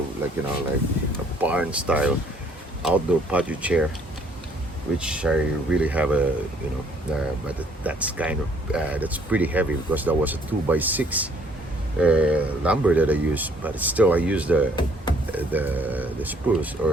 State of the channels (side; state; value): both; normal; correlation 0.63